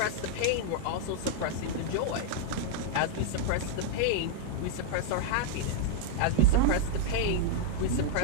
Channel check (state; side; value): different; both; correlation -0.01